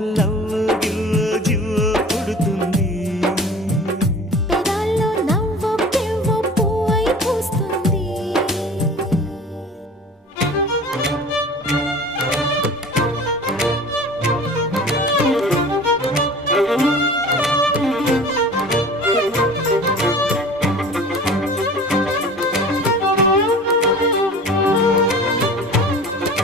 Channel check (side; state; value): both; normal; correlation 0.41